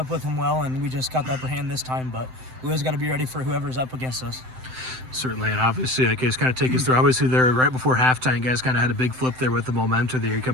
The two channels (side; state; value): left; late; 7.8 ms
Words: with them well, and we just got the upper hand this time. But we always got to be ready for whoever's up against us. Certainly, and obviously, Case, kind of take us through. Obviously, there right before halftime, you guys kind of had a big flip there with the momentum there. You come